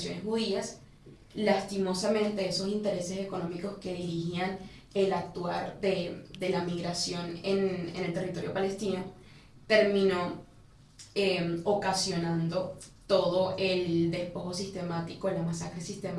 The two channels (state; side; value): identical; both; correlation 1.00